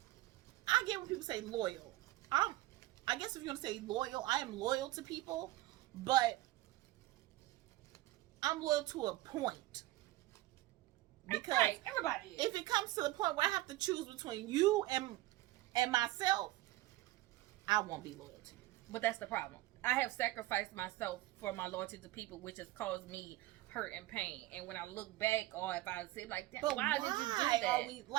I get when people say loyal. I guess if you want to say loyal, I am loyal to people, but I'm loyal to a point. Because right. Everybody is. If it comes to the point where I have to choose between you and myself, I won't be loyal to you. But that's the problem. I have sacrificed myself for my loyalty to people, which has caused me hurt and pain. And when I look back, or if I say like that, why did you do that? Are we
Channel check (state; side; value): quieter; left; 17.6 dB